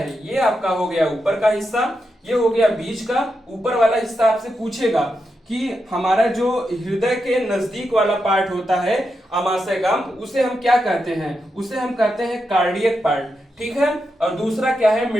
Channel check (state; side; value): normal; both; correlation 0.86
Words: ये आपका हो गया ऊपर का हिस्सा, ये हो गया बीच का। ऊपर वाला हिस्सा आपसे पूछेगा कि हमारा जो हृदय के नजदीक वाला पार्ट होता है आमाशय का, उसे हम क्या कहते हैं, उसे हम कहते हैं कार्डियक पार्ट, ठीक है। और दूसरा क्या है,